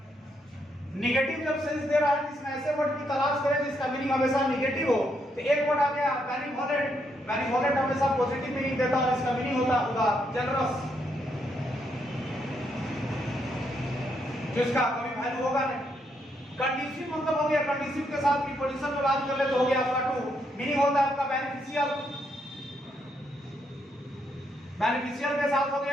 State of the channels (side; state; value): both; normal; correlation 0.77